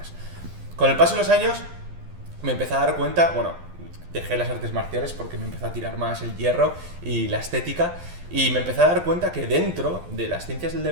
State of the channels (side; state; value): left; late; 12 ms